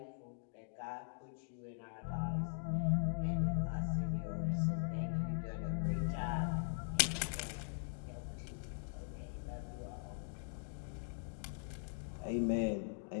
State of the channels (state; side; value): silent; right; digital silence